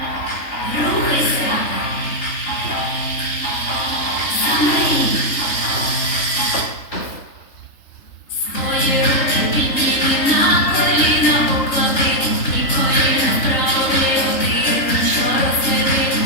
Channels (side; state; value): right; late; 3.3 ms